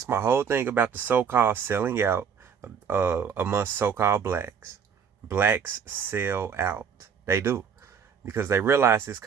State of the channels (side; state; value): left; quieter; 7.0 dB